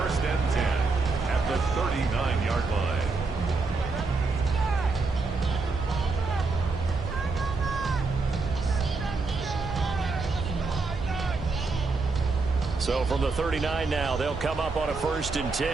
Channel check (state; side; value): quieter; left; 4.0 dB